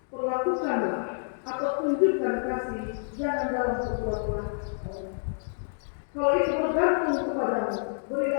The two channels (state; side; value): silent; right; digital silence